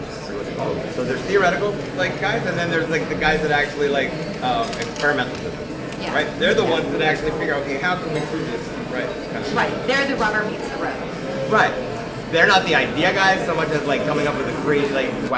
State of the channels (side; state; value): both; identical; correlation 1.00